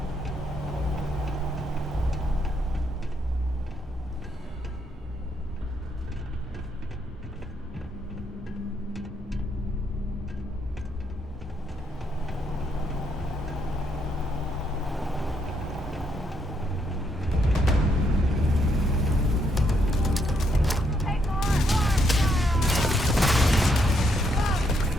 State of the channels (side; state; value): both; normal; correlation 0.75